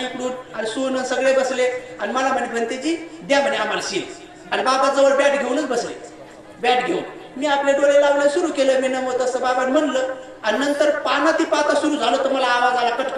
आणि सोनं सगळे बसले आणि मला म्हणे भंतेजी द्या म्हणे आम्हाला सील. आणि बाबा जवळ बॅट घेऊनच बसले. बॅट घेऊन मी आपले डोळे लावले, सुरू केलं मी नमो तसं बाबा म्हणलं. आणि नंतर पानाती पाता सुरू झालं तर मला आवाज आला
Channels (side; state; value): both; identical; correlation 1.00